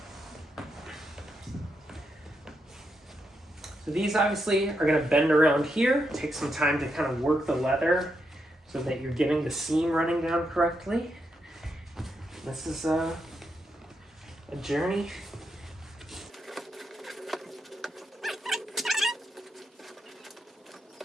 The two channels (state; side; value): normal; both; correlation 0.82